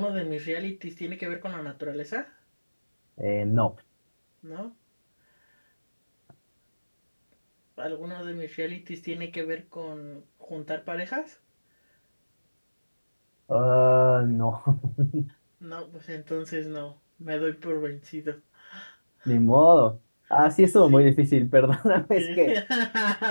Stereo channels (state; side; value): inverted; both; correlation -1.00